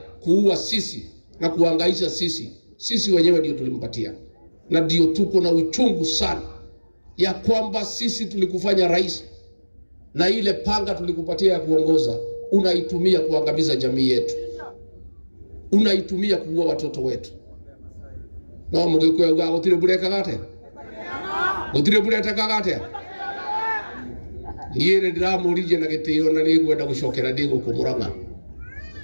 kuua sisi na kuangaisha sisi wenyewe ndio tulimpatia. Na ndio tuko na uchungu sana ya kwamba sisi tulikufanya rais, na ile panga tulikupatia ya kuongoza unaitumia kuangamiza jamii yetu, unaitumia kuua watoto wetu. No mugikuya uga gutire bureka gate, gutire bureka gate. Niye ndiramurije na gitio na nigwenda gucokera ndigo kumuranga.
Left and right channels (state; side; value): inverted; both; correlation -1.00